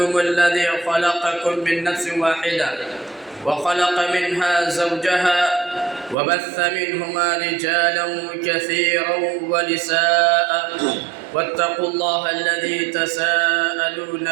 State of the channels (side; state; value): left; drops out; at 6.2 s